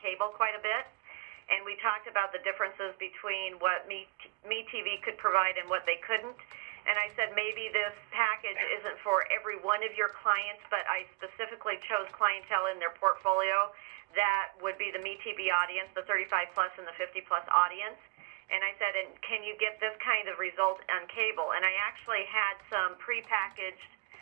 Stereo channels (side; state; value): left; quieter; 28.6 dB